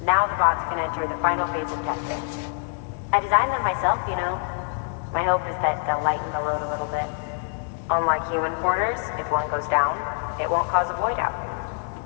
Now the bots can enter the final phase of testing. I designed them myself, you know. My hope is that they'll lighten the load a little bit. Unlike human porters, if one goes down, it won't cause a void out.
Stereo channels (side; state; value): right; silent; 56 dB below the other